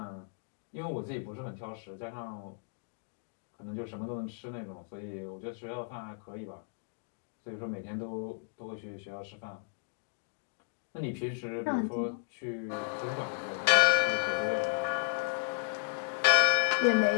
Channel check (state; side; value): silent; right; digital silence